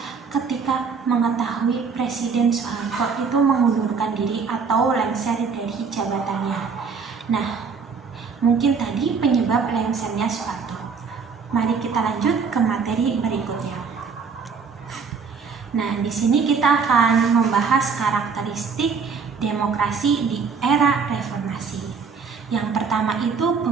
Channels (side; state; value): left; quieter; 5.6 dB